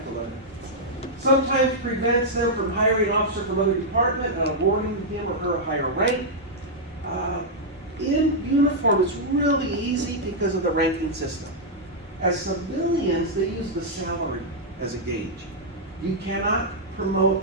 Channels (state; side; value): normal; both; correlation -0.06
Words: to let it. Sometimes prevents them from hiring an officer from another department and awarding him or her a higher rank. In uniform, it's really easy because of the ranking system. As civilians, they use the salary as a gauge. You cannot promote